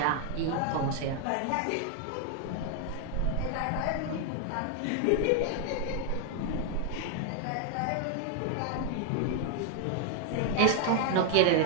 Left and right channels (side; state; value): both; different; correlation 0.00